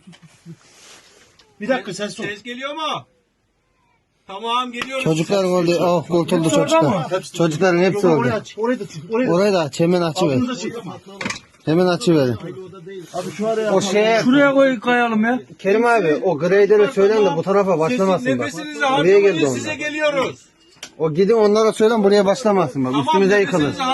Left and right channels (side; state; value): both; identical; correlation 1.00